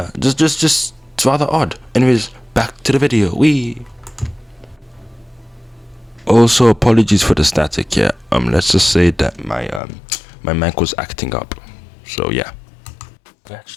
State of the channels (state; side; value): drops out; right; at 9.8 s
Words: just it's rather odd. Anyways, back to the video. Also, apologies for the static. Yeah, let's just say that my mic was acting up. So yeah.